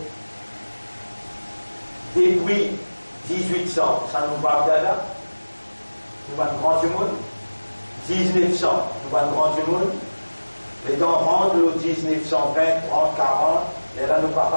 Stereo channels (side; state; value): both; inverted; correlation -1.00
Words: depuis 1800, ça nous va là, nous va grand du monde, 1900, nous va grand du monde, les temps rentrent le 1920, 30, 40, et là nous ne va